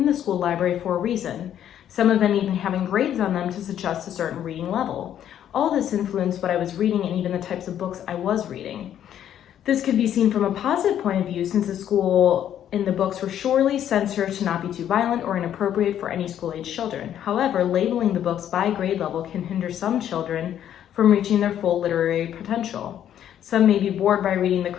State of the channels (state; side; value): quieter; right; 10.4 dB